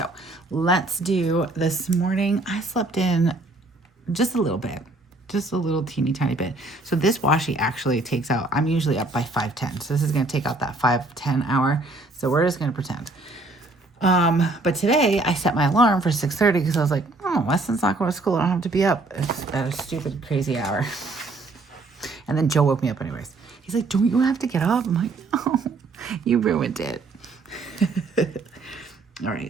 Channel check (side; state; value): left; quieter; 3.1 dB